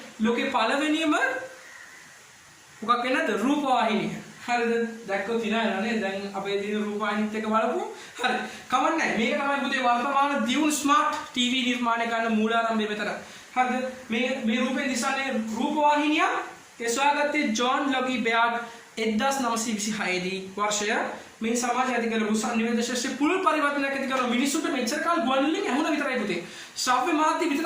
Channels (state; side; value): identical; both; correlation 1.00